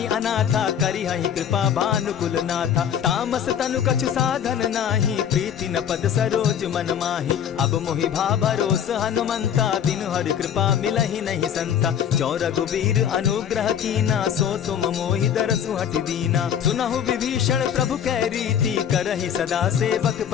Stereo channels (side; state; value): right; quieter; 8.8 dB